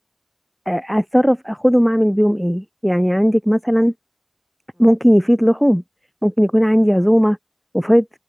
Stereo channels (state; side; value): identical; both; correlation 1.00